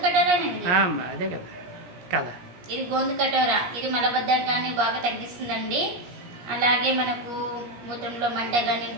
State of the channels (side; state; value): left; late; 17 ms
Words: కటోరా అదే కదా కదా, ఇది గోందు కటోరా. ఇది మలబద్ధకాన్ని బాగా తగ్గిస్తుందండి. అలాగే మనకు మూత్రంలో మంట కానీ,